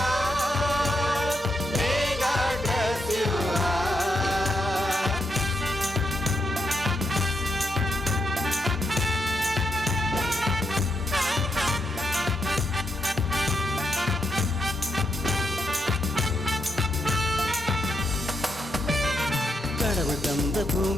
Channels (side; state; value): both; normal; correlation 0.82